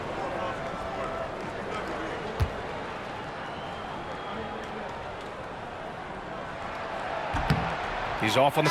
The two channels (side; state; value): both; identical; correlation 1.00